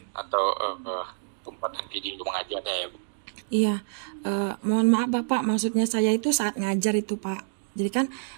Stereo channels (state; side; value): silent; left; digital silence